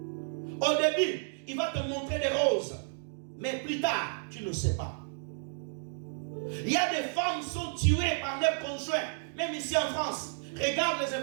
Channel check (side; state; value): left; silent; digital silence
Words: Au début, il va te montrer des roses. Mais plus tard, tu ne sais pas. Il y a des femmes qui sont tuées par leurs conjoints, même ici en France. Regarde les